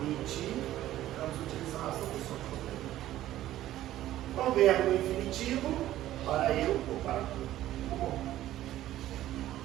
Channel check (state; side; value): quieter; left; 13.8 dB